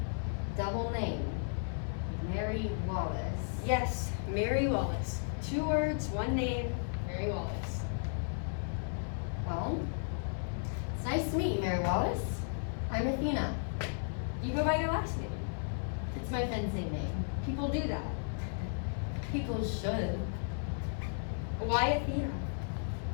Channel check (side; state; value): right; silent; 55 dB below the other